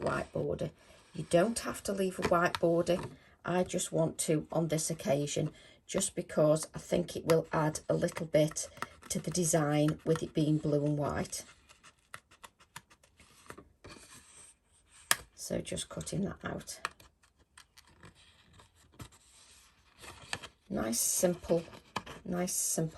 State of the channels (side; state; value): both; identical; correlation 1.00